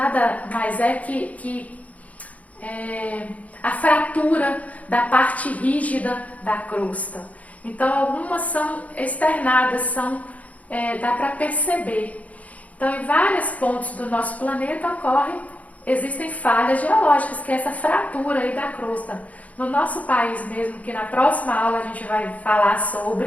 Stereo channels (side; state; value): right; late; 0.070 ms